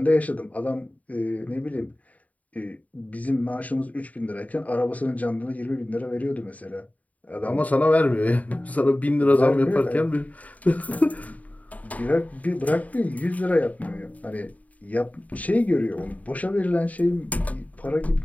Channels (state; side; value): late; right; 0.071 ms